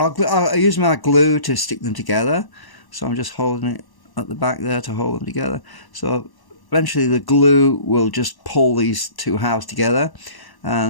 use my glue to stick them together. So I'm just holding it at the back there to hold them together. So eventually the glue will just pull these two halves together.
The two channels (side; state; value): right; late; 1.1 ms